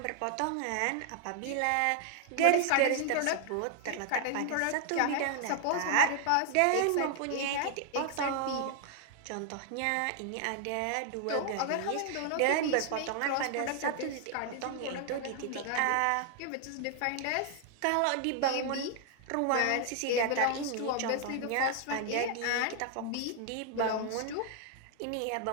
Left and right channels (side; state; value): both; different; correlation 0.00